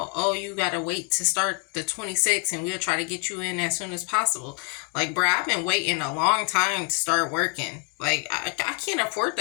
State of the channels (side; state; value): right; quieter; 33.8 dB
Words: oh, you got to wait to start the 26th and we'll try to get you in as soon as possible. Like, bruh, I've been waiting a long time to start working. Like, I can't afford